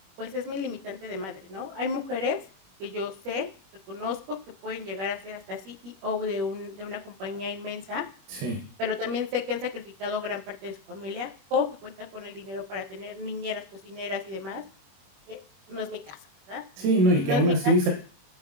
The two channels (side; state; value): left; late; 21 ms